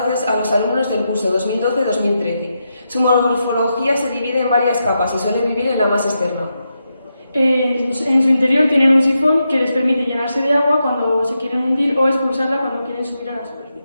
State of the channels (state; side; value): inverted; both; correlation -0.86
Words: a los alumnos del curso 2012-2013. Su morfología se divide en varias capas y suele vivir en la más externa. En su interior tienen un sifón que les permite llenarse de agua cuando se quieren hundir o expulsarla cuando quieren subir a la